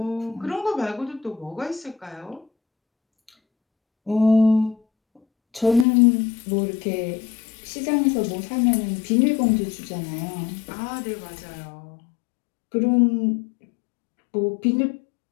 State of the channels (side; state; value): right; drops out; at 5.9 s